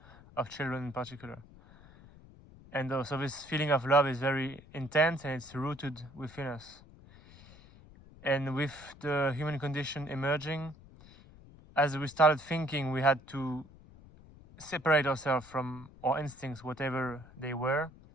of children in particular. And so this feeling of love is very intense and it's rooted within us. And with the human condition emerging, as we started thinking, we had to separate ourselves from our instincts, whatever they were.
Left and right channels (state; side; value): noise; left; rumble, 22 dB below the sound